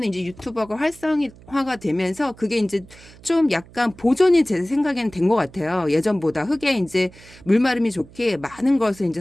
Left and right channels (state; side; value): noise; right; hum, 22 dB below the sound